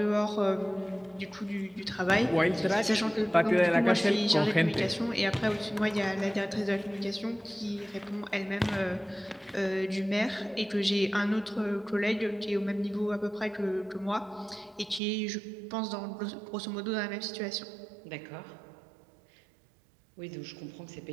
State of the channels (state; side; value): drops out; left; at 15.0 s